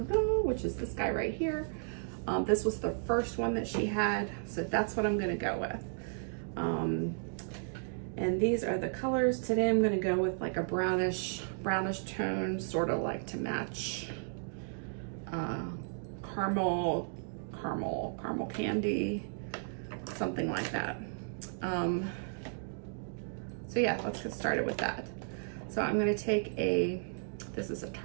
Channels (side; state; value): left; silent; digital silence